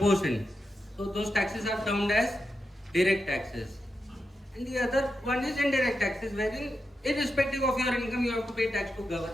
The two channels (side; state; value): both; normal; correlation 0.88